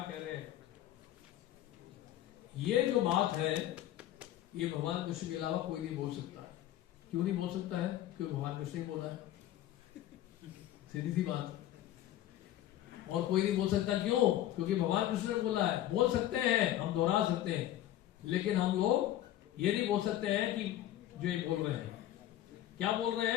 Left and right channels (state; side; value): quieter; right; 13.1 dB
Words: कह रहे हैं। ये जो बात है ये भगवान कृष्ण के अलावा कोई नहीं बोल सकता। क्यों नहीं बोल सकता है? क्योंकि भगवान कृष्ण ही बोला है, सीधी सी बात। और कोई नहीं बोल सकता, क्यों? क्योंकि भगवान कृष्ण ने बोला है। बोल सकते हैं, हम दोहरा सकते हैं, लेकिन हम लोग ये नहीं बोल सकते हैं कि जो ये बोल रहे हैं। क्या बोल रहे